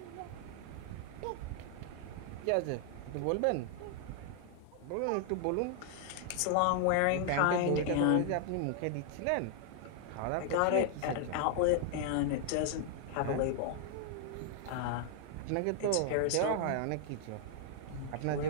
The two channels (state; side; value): different; both; correlation 0.00